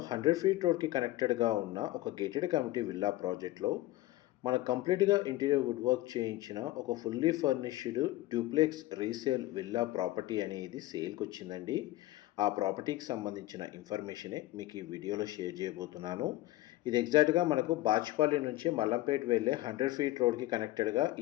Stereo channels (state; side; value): quieter; right; 17.1 dB